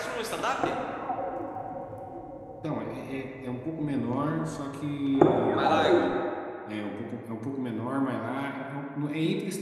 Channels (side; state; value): both; identical; correlation 1.00